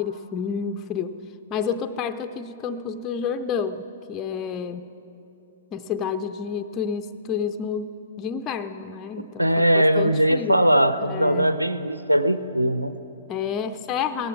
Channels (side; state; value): both; inverted; correlation -0.63